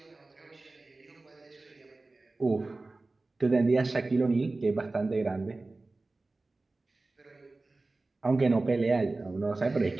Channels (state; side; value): quieter; left; 3.3 dB